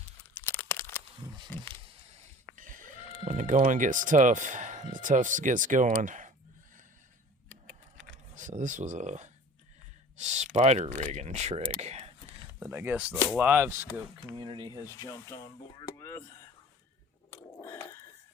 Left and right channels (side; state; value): both; normal; correlation 0.44